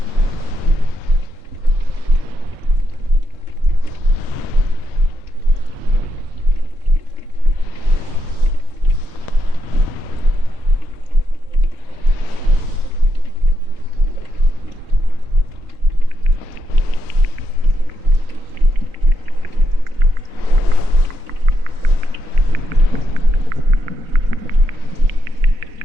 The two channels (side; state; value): left; late; 4.1 ms